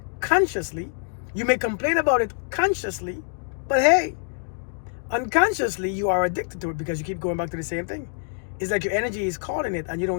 consciously, you may complain about it consciously, but hey, unconsciously you are addicted to it because you keep going back to the same thing. It's like your energy is calling it and you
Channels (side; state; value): right; silent; digital silence